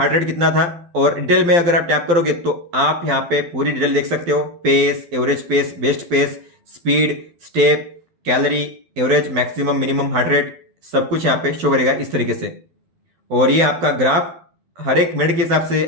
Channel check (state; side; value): late; left; 12 ms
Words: रेट कितना था। और डिटेल में अगर आप टैप करोगे तो आप यहाँ पे पूरी डिटेल देख सकते हो। Pace, average pace, best pace, speed, step, calorie, average, maximum, minimum heart rate, सब कुछ यहाँ पे शो करेगा इस तरीके से। और ये आपका ग्राफ हर एक मिनट के हिसाब